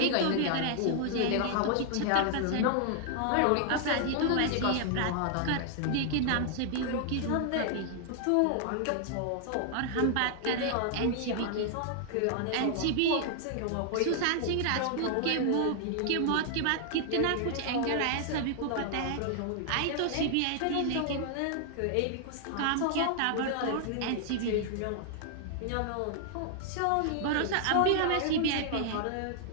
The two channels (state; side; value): different; both; correlation 0.00